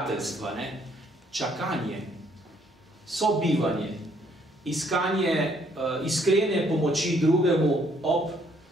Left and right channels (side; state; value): both; normal; correlation 0.67